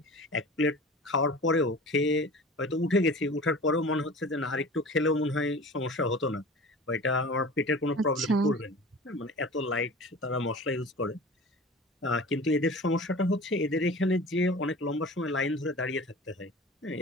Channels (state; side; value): normal; both; correlation 0.39